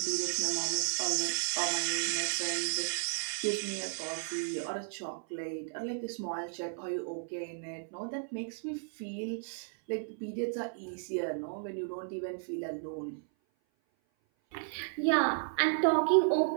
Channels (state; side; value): silent; left; 55 dB below the other